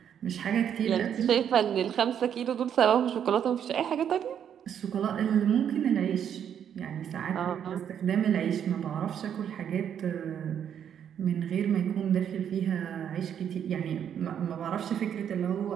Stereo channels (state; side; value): quieter; left; 8.9 dB